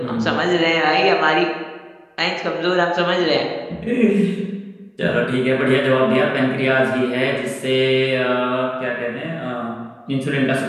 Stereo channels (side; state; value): both; identical; correlation 1.00